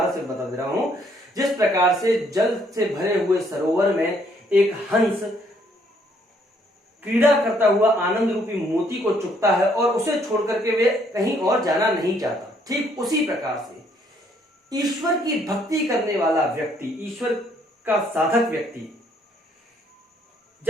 से बता दे रहा हूं, जिस प्रकार से जल से भरे हुए सरोवर में एक हंस क्रीड़ा करता हुआ आनंद रूपी मोती को चुगता है और उसे छोड़ करके वे कहीं और जाना नहीं चाहता, ठीक उसी प्रकार से ईश्वर की भक्ति करने वाला व्यक्ति, ईश्वर का साधक व्यक्ति,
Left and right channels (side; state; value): both; normal; correlation 0.67